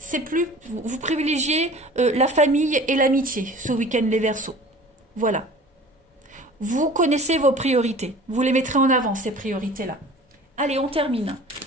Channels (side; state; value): both; normal; correlation 0.43